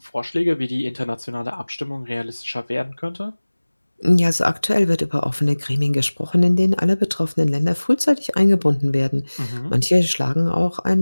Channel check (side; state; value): both; inverted; correlation -1.00